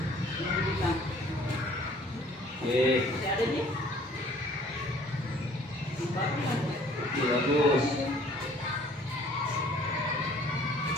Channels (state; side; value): normal; both; correlation 0.56